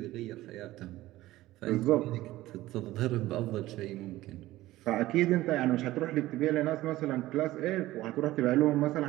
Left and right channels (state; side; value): quieter; left; 16.6 dB